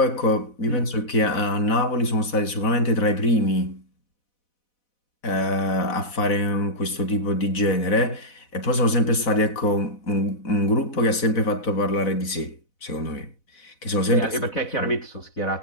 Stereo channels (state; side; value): late; right; 4.0 ms